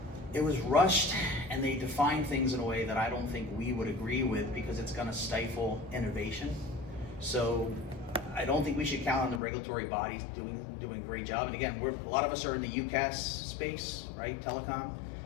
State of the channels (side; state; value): right; drops out; at 9.4 s